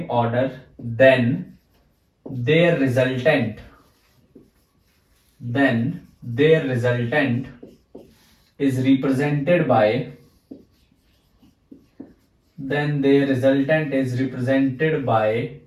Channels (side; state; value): both; identical; correlation 1.00